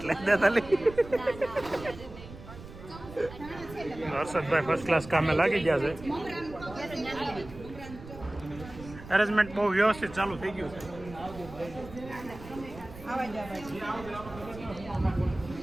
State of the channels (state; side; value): noise; right; rumble, 15 dB below the sound